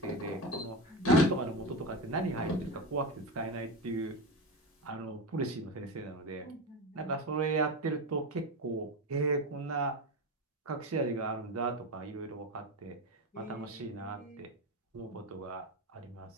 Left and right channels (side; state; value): both; normal; correlation 0.19